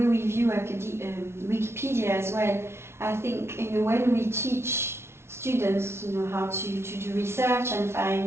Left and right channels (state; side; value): late; left; 0.12 ms